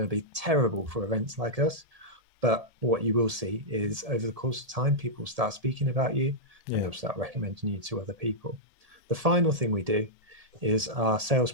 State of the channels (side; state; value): left; late; 1.7 ms